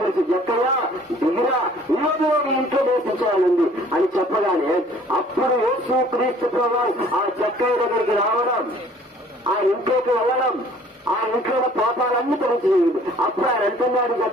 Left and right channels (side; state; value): both; normal; correlation 0.54